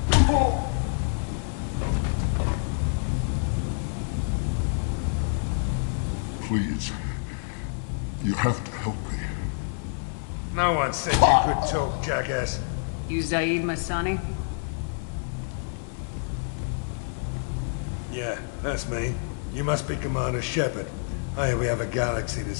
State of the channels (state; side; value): silent; right; 60 dB below the other